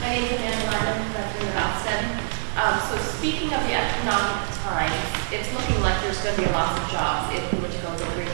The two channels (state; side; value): silent; left; digital silence